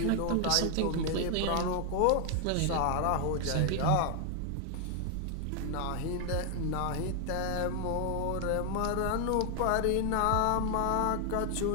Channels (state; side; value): different; both; correlation 0.00